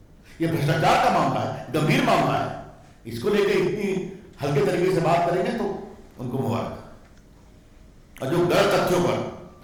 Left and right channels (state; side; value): identical; both; correlation 1.00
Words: ये भ्रष्टाचार का मामला है, गंभीर मामला है। इसको लेकर इतनी हल्के तरीके से बात करेंगे तो उनको मुबारक। और जो गलत तथ्यों पर